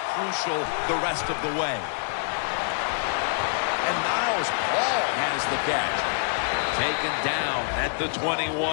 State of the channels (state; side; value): silent; right; digital silence